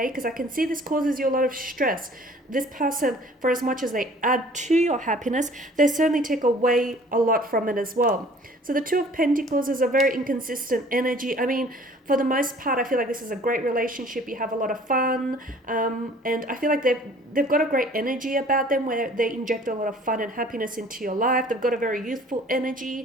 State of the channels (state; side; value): normal; both; correlation 0.52